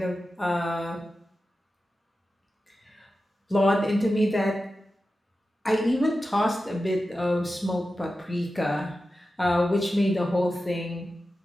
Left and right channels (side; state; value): both; normal; correlation 0.92